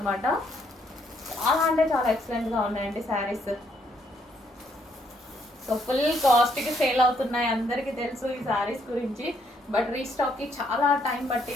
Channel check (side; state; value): both; normal; correlation 0.71